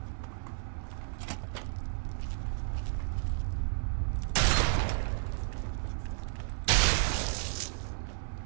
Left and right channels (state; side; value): silent; left; 56 dB below the other